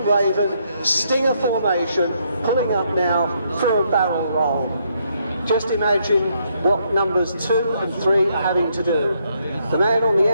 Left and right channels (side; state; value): both; inverted; correlation -0.74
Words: Raven, Stinger formation, pulling up now for a barrel roll. Just imagine what numbers 2 and 3 are having to do. The man on the